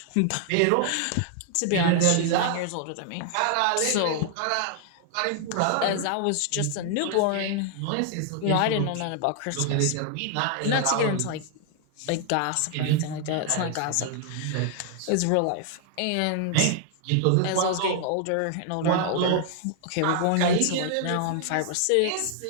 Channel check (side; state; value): both; different; correlation 0.00